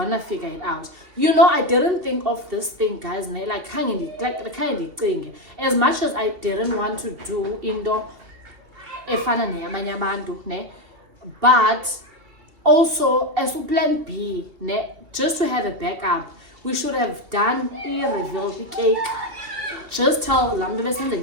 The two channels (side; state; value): left; late; 2.9 ms